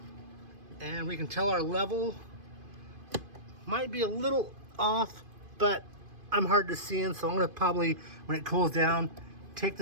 And we can tell our level might be a little off, but I'm hard to see in, so I'm going to probably, when it cools down, take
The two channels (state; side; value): late; left; 2.5 ms